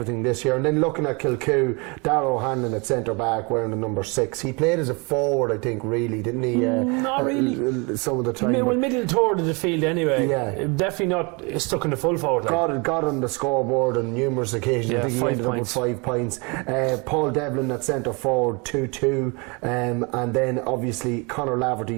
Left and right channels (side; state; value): left; quieter; 30.4 dB